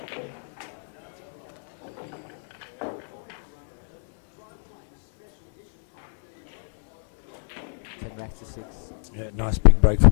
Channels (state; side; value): silent; right; digital silence